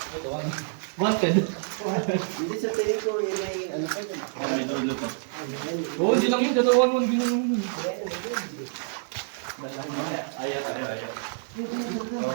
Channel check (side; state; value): left; silent; 60 dB below the other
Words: Wanted. Hindi sa tingin ko, may ano pa dyan. May dulo pa. Oo, hindi lang yun. Dalawan mo. Ginanong yun.